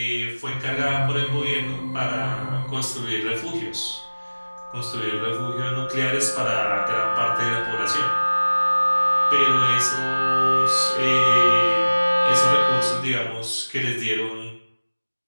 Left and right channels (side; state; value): both; inverted; correlation -1.00